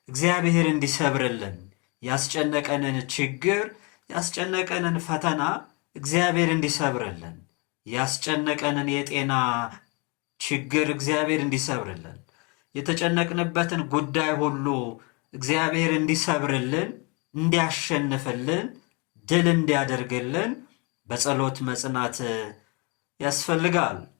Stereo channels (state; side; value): quieter; right; 30.9 dB